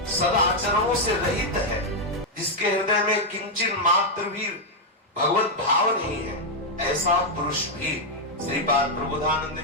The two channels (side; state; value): both; normal; correlation -0.01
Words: सदाचरणों से रहित है, जिसके हृदय में किंचित मात्र भी भगवत भाव नहीं है, ऐसा पुरुष भी श्रीपाद प्रबोधानंद